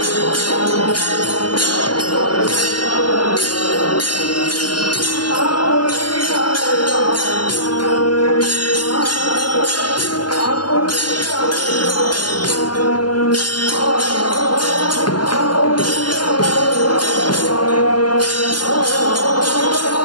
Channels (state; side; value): late; right; 0.71 ms